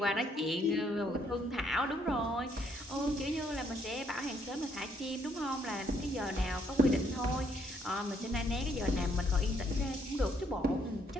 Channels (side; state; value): both; normal; correlation 0.70